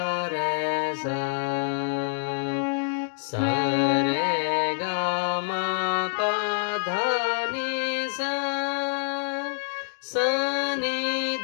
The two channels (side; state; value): right; silent; digital silence